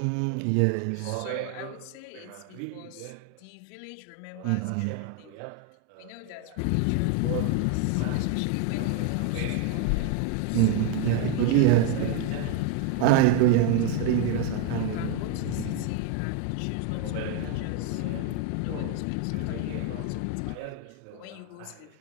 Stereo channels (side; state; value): both; different; correlation 0.01